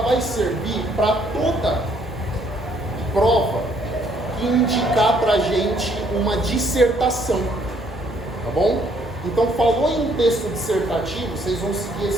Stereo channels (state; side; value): normal; both; correlation 0.66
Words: vai servir para toda prova indicar para a gente uma dissertação, tá bom? Então, falou em texto dissertativo, vocês vão seguir